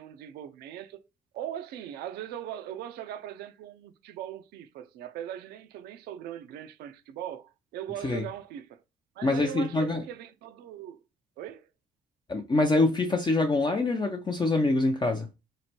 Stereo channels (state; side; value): normal; both; correlation 0.67